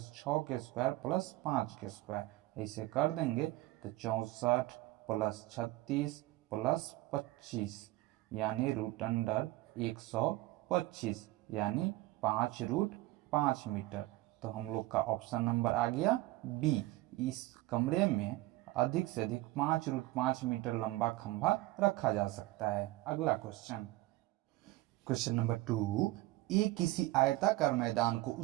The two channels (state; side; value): quieter; left; 18.4 dB